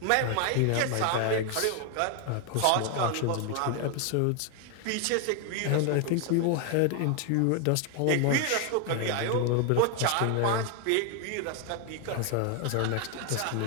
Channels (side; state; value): both; different; correlation 0.01